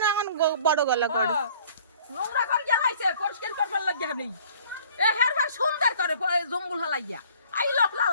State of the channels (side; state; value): both; inverted; correlation -0.53